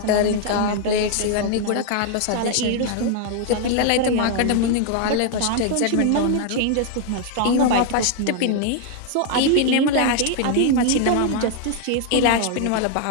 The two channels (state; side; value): different; both; correlation 0.00